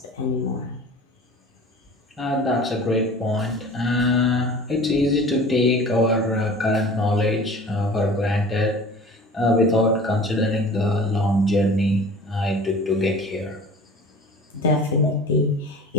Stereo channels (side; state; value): both; normal; correlation 0.42